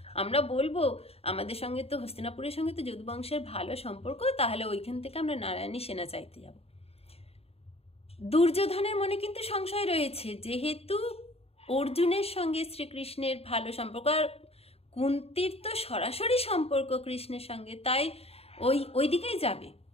আমরা বলবো আমাদের সঙ্গে তো হস্তিনাপুরের সঙ্গে তো যদু বংশের ভালো সম্পর্ক, তাহলে ওইখান থেকে আমরা নারায়ণী সেনা চাইতে যাব। দুর্যোধনের মনে কিন্তু সংশয় রয়েছে, যেহেতু অর্জুনের সঙ্গে শ্রীকৃষ্ণের ভালো সম্পর্ক, আর কুন্তির তো সরাসরি সম্পর্ক কৃষ্ণের সঙ্গে, তাই ওই দিকেই যাবে।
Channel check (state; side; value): late; right; 0.29 ms